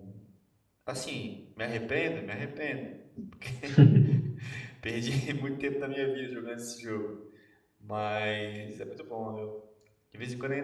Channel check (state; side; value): identical; both; correlation 1.00